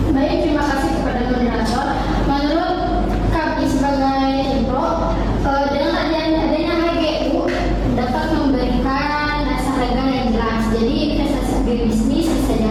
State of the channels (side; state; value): both; identical; correlation 1.00